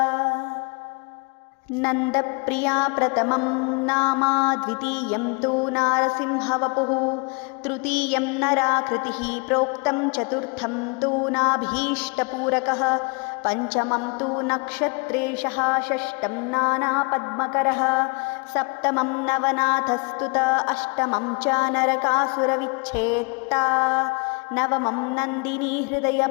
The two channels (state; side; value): quieter; right; 32.5 dB